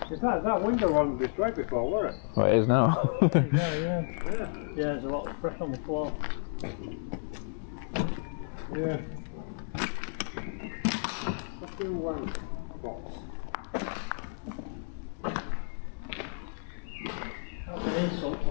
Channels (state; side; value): silent; right; 57 dB below the other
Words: That window wasn't destroyed before, was it? Well, it is now. Yeah, there's a lot of pressure on the floor. Yeah. Let's do one box. That's an insult to